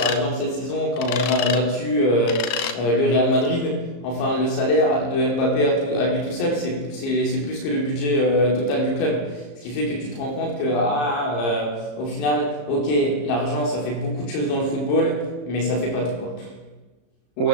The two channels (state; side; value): late; right; 34 ms